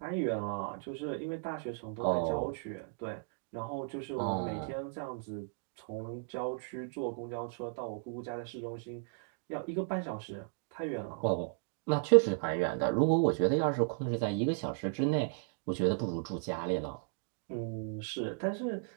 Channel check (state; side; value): silent; left; digital silence